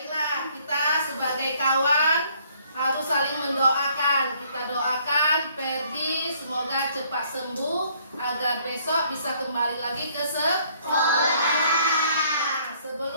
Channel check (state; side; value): inverted; both; correlation -0.63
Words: kita sebagai kawan harus saling mendoakan. Kita doakan Ferdi semoga cepat sembuh agar besok bisa kembali lagi ke sekolah.